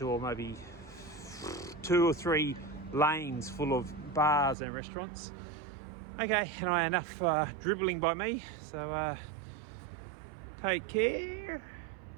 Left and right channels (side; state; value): left; drops out; at 4.5 s